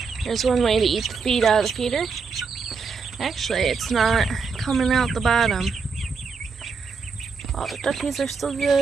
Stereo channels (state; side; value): quieter; left; 5.1 dB